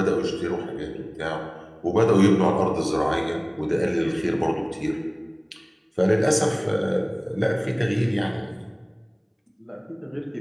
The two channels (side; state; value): both; identical; correlation 1.00